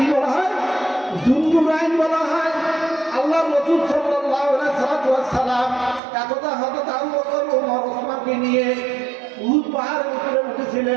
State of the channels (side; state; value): left; drops out; at 6.0 s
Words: বলা হয়? যুন্নুরাইন বলা হয়। আল্লাহ রাসূল সাল্লাল্লাহু আলাইহি ওয়াসাল্লাম একদা হযরত আবু বকর ওমর ওসমানকে নিয়ে উহুদ পাহাড়ের উপরে